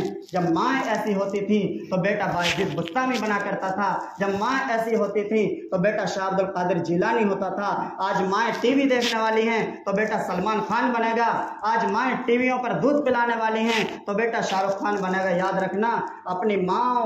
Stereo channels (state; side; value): identical; both; correlation 1.00